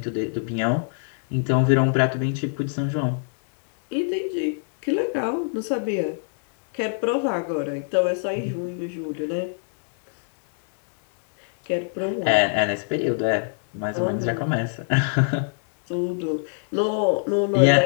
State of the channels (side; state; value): right; silent; digital silence